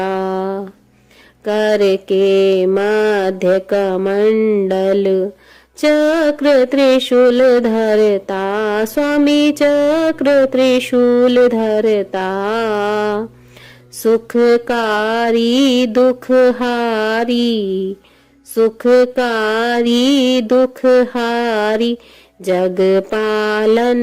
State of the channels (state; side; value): identical; both; correlation 1.00